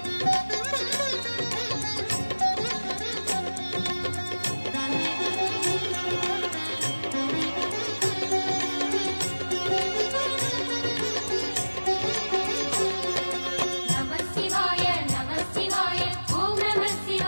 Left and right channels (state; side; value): inverted; both; correlation -1.00